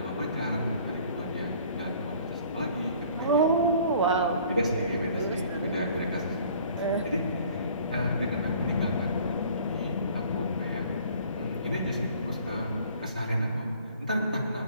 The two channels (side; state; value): both; inverted; correlation -0.53